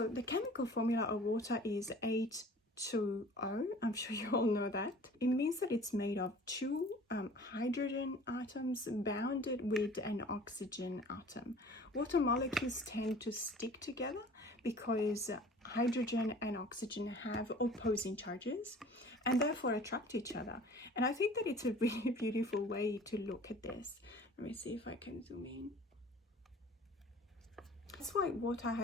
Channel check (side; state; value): both; normal; correlation 0.47